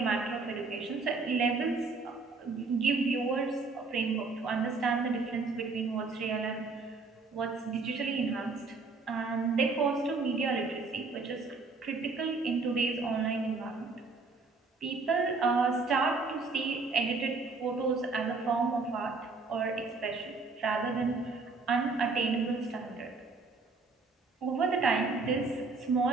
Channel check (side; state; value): left; quieter; 4.0 dB